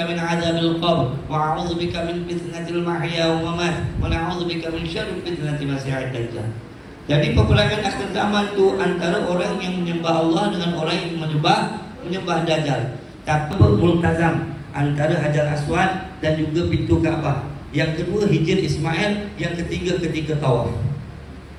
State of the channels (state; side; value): identical; both; correlation 1.00